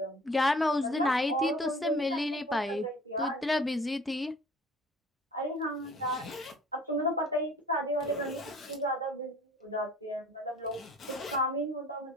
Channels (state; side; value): normal; both; correlation 0.49